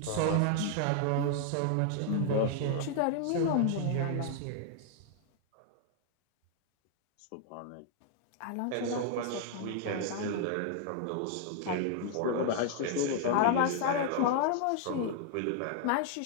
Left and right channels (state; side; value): different; both; correlation 0.00